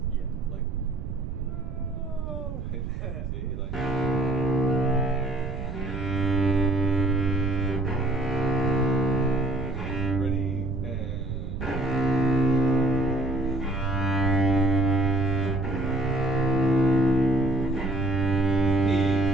Yeah. Like, no. See, like. Ready, and.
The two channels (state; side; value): noise; right; rumble, 7 dB below the sound